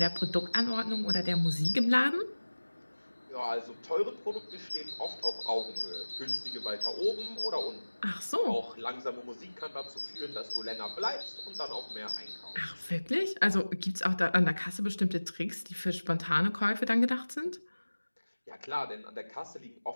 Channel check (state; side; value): inverted; both; correlation -1.00